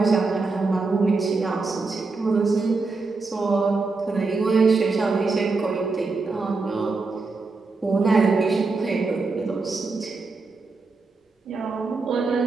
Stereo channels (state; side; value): quieter; left; 3.9 dB